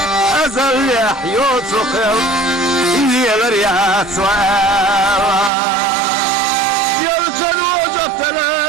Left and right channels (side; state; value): left; drops out; at 5.5 s